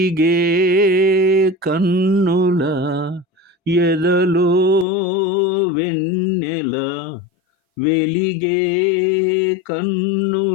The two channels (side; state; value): right; drops out; at 4.9 s